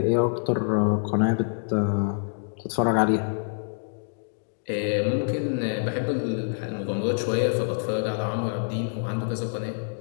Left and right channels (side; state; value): right; silent; digital silence